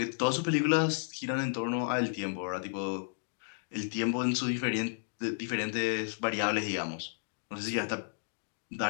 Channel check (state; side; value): silent; right; digital silence